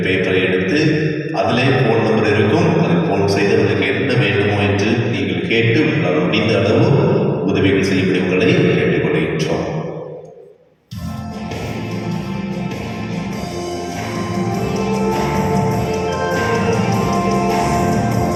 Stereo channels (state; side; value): identical; both; correlation 1.00